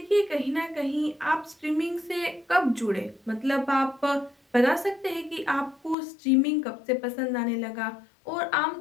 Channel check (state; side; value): drops out; right; at 6.0 s